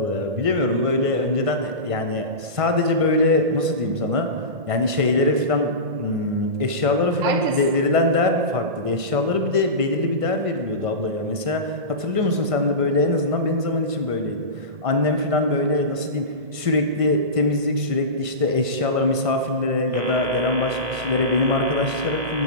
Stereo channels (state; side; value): late; left; 1.5 ms